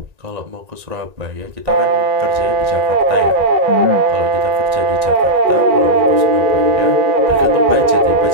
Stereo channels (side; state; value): left; late; 1.9 ms